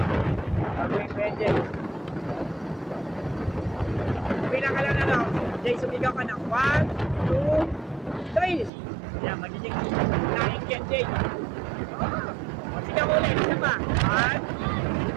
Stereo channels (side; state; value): left; drops out; at 8.7 s